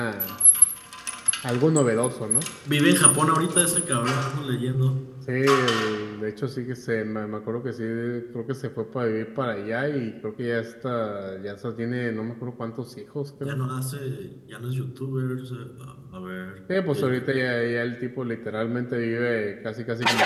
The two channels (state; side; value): identical; both; correlation 1.00